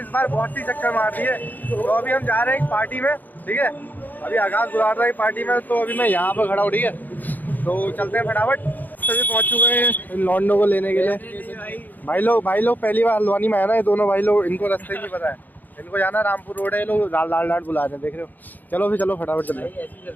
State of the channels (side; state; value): right; late; 0.084 ms